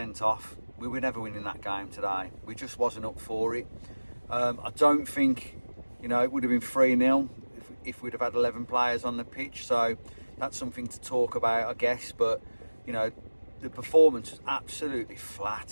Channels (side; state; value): both; inverted; correlation -1.00